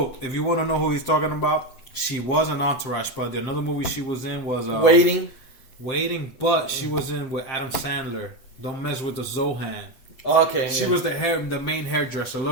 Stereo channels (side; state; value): right; late; 8.1 ms